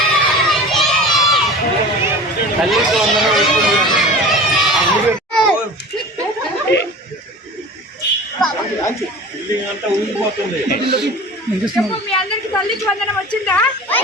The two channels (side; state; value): both; normal; correlation 0.37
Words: మీ అందరికి తల్లికి వందనం వచ్చిందా?